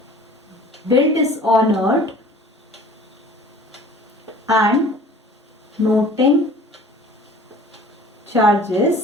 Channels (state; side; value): normal; both; correlation 0.47